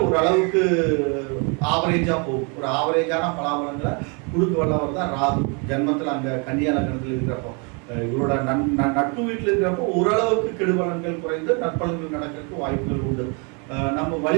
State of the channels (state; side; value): quieter; left; 34.1 dB